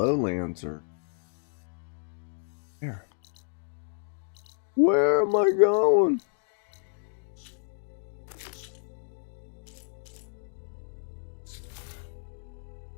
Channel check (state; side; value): silent; right; digital silence